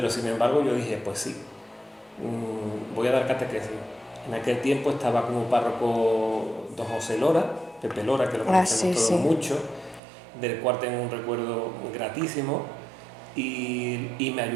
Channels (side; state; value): left; drops out; at 10.0 s